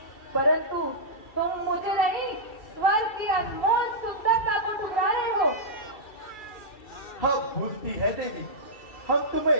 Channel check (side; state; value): right; late; 2.3 ms